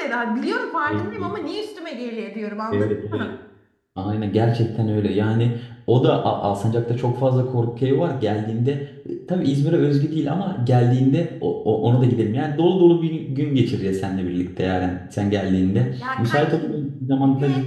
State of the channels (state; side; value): identical; both; correlation 1.00